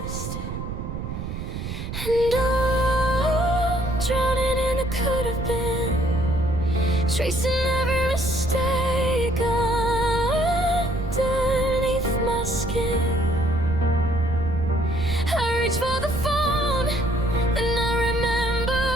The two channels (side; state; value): right; noise; rumble, 6 dB below the sound